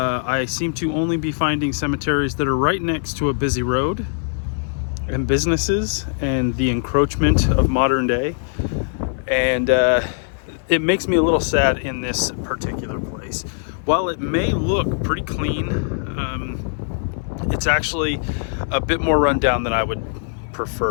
seem to only be finding cemeteries that are right next to a busy road and businesses and the encroachment of modern day, and it makes me a little sad in this particular place. While it may look pretty clean, it's actually a bit more rundown than I would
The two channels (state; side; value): silent; right; 60 dB below the other